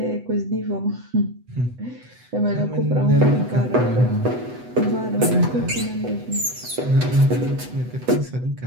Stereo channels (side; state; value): left; late; 8.0 ms